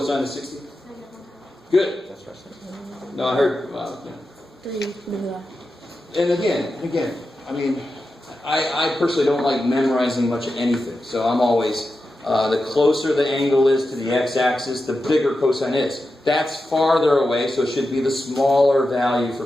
of 60? Good. That's what I said. No, I heard. Well, yeah. 3. Blah. And again, I mean, I personally don't like memorizing much of anything. So I'm always, the closer the angle is to the x-axis, the bigger cosine is. That's farther away, so it should be the smaller value for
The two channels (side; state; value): both; normal; correlation 0.90